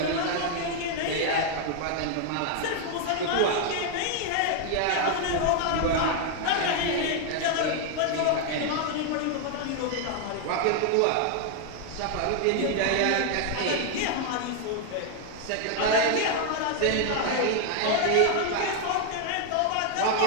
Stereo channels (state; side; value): different; both; correlation 0.00